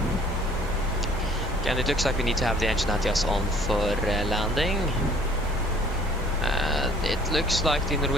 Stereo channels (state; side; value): normal; both; correlation 0.55